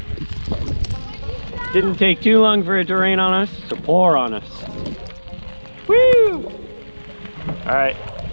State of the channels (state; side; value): inverted; both; correlation -1.00